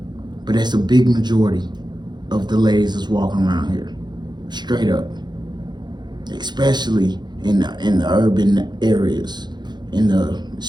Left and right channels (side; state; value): left; late; 0.21 ms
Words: but that's a big majority of the ladies that's walking around here, straight up. Especially in the urban areas,